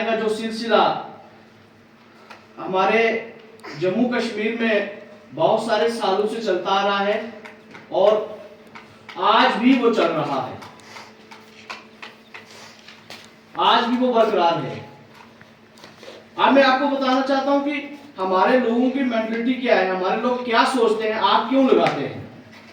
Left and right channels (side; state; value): both; identical; correlation 1.00